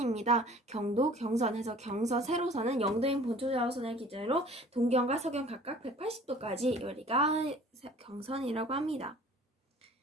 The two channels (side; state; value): both; normal; correlation 0.49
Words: 경도, 경선 해서 세로선은 영도인 본초 좌우선을 기준으로 동경과 서경 각각 180도까지 우리가 경선이라고 합니다.